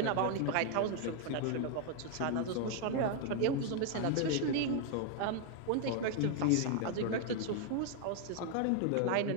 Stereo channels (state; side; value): different; both; correlation 0.00